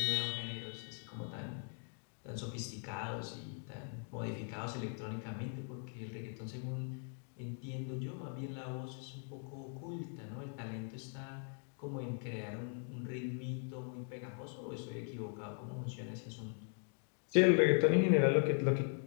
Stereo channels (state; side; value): silent; right; 51 dB below the other